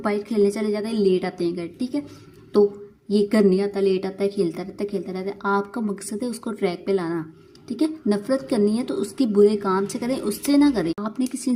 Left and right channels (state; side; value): identical; both; correlation 1.00